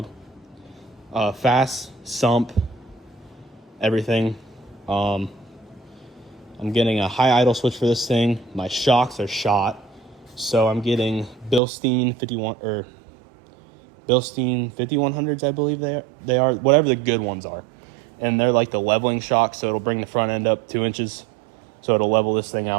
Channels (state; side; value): drops out; left; at 11.6 s